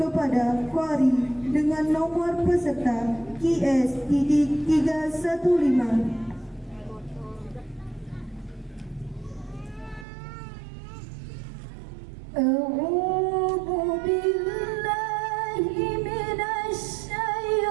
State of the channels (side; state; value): left; drops out; at 10.1 s